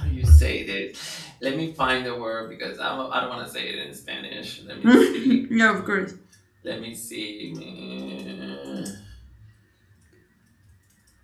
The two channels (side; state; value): both; identical; correlation 1.00